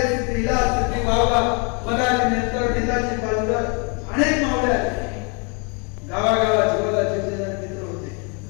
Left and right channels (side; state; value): right; quieter; 34.5 dB